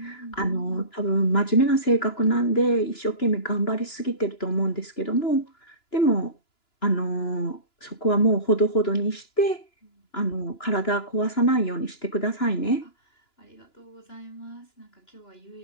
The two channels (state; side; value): late; right; 2.9 ms